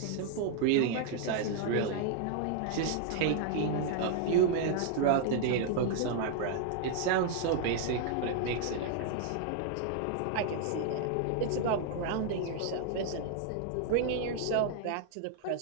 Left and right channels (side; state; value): both; different; correlation -0.01